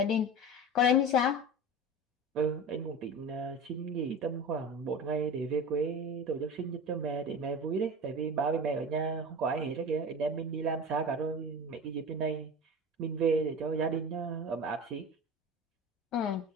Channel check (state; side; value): normal; both; correlation 0.31